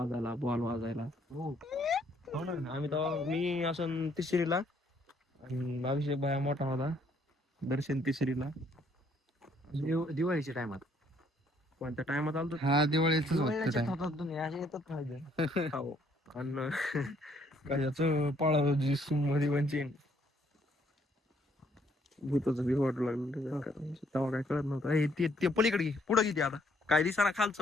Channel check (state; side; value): normal; both; correlation 0.67